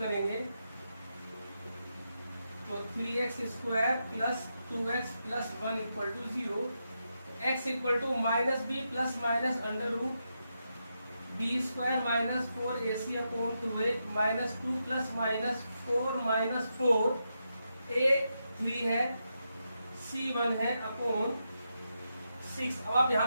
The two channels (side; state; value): both; inverted; correlation -0.85